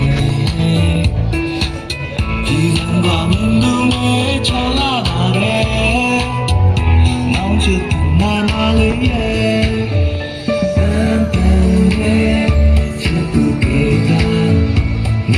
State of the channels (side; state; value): both; identical; correlation 1.00